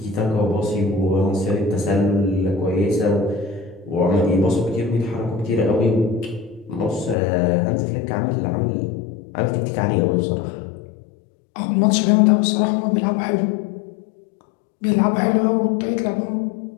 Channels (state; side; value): drops out; right; at 7.2 s